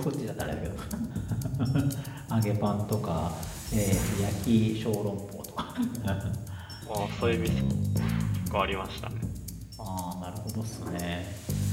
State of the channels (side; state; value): both; identical; correlation 1.00